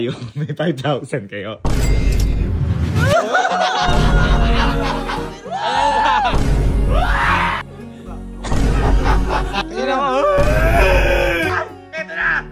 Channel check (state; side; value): identical; both; correlation 1.00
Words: may 5,000 kayo. Ito na!